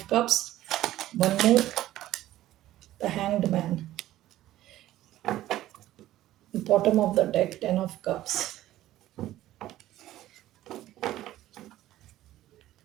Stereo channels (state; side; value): quieter; left; 14.4 dB